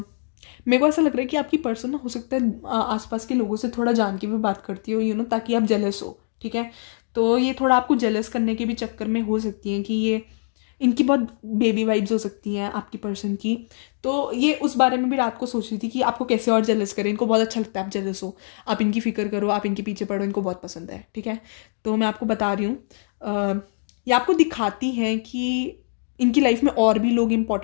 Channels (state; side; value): silent; right; digital silence